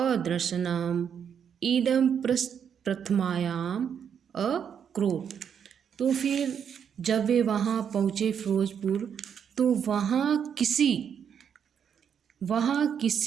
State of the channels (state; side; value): quieter; left; 7.9 dB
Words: इदं प्रथमायाम अक्रोध। तो फिर जब वे वहाँ पहुँचे फिरोजपुर, तो वहाँ